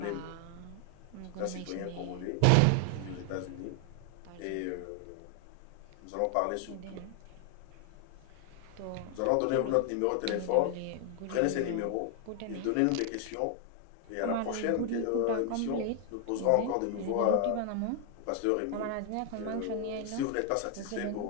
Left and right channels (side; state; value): both; different; correlation 0.00